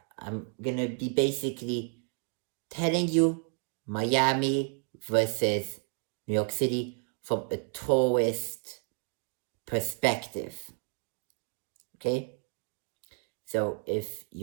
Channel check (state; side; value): quieter; left; 39.5 dB